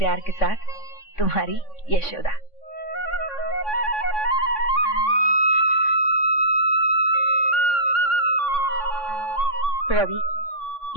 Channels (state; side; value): late; right; 3.6 ms